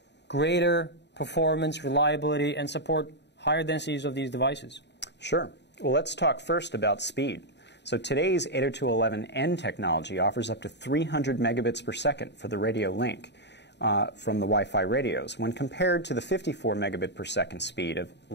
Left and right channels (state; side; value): late; right; 0.50 ms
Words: greater performance, reliability, and support higher densities of these devices? Sure. Well, let's talk first about speed. So today's 802.11n technology offers up to 300 megabits per second for the radio link from the Wi-Fi radios when compared to the 54 megabit per second speed of